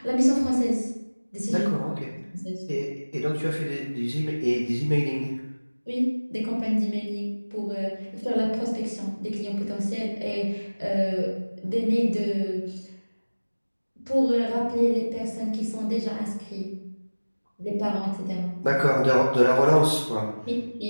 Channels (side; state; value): both; inverted; correlation -1.00